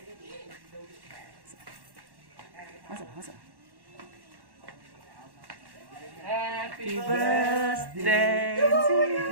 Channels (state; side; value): late; left; 1.1 ms